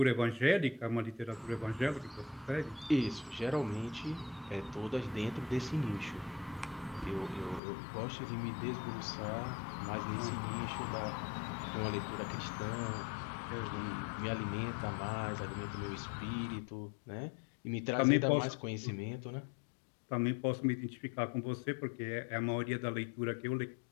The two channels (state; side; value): drops out; right; at 7.6 s